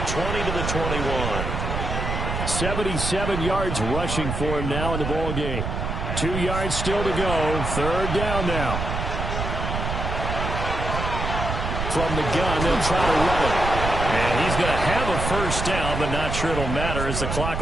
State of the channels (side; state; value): right; noise; rumble, 3 dB below the sound